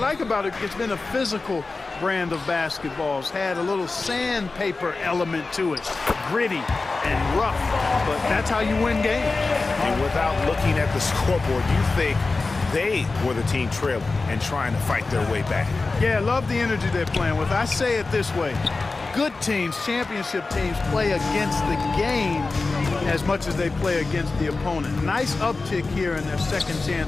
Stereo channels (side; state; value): right; quieter; 3.7 dB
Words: about it, it's been a physical brand of basketball. It's had a little sandpaper element to it. Gritty and rough, but that's how you win games. And without looking at the scoreboard, you think they were the team trailing and trying to fight their way back. Yeah, I love the energy they're playing with. I say it this way. Good teams, championship teams, play against the game as much as they play against the opponent. Nice uptick here in their second